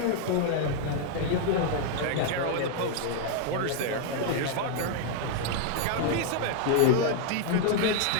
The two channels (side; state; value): both; different; correlation 0.00